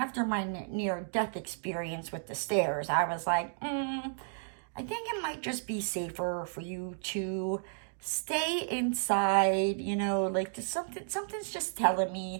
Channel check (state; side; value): silent; left; digital silence